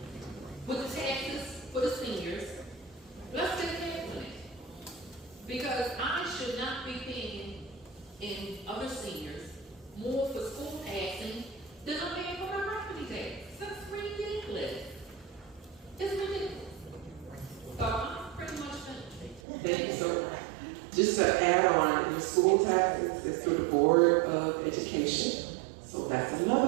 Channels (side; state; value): left; drops out; at 19.4 s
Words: with the taxes for the seniors, let's get that money. Because I should not be paying in other seniors more for school taxing than I'm paying for my property tax. That's ridiculous. It's ridiculous. So I'm pretty much finished. Thank you so much. Just to add on, your school taxes is through the Board of Education. So that's